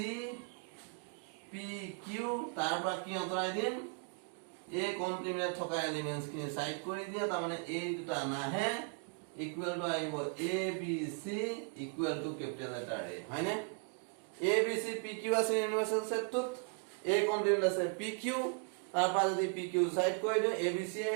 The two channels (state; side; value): quieter; left; 36.7 dB